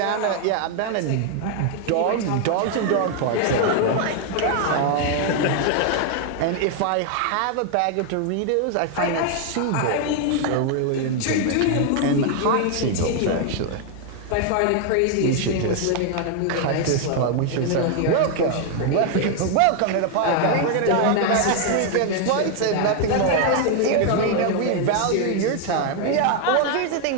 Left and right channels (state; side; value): different; both; correlation 0.00